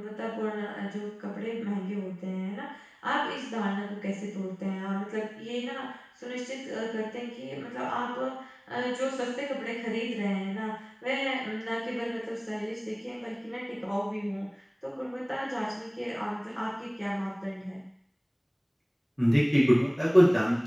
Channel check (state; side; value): identical; both; correlation 1.00